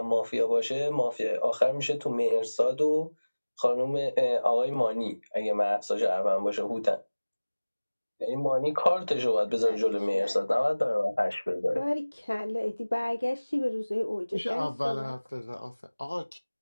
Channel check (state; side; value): inverted; both; correlation -1.00